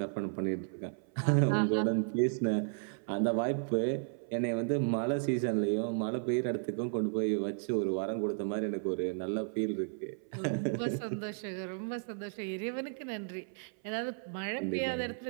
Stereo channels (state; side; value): silent; left; 55 dB below the other